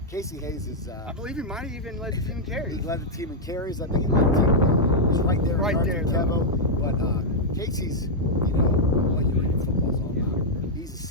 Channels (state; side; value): normal; both; correlation -0.04